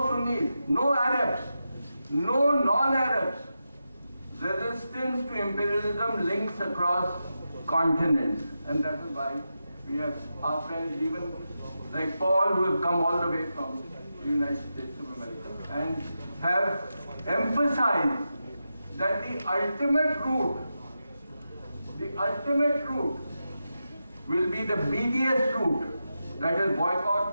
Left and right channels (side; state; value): both; inverted; correlation -0.89